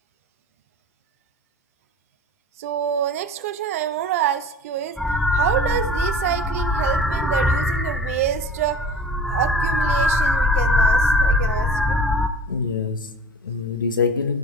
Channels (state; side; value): normal; both; correlation 0.41